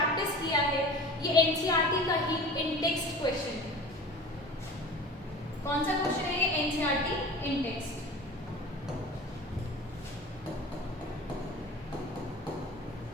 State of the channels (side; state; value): both; normal; correlation 0.38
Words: किया है ये एनसीईआरटी का ही इन टेक्स्ट क्वेश्चन। कौन सा क्वेश्चन है ये? एनसीईआरटी इन टेक्स्ट।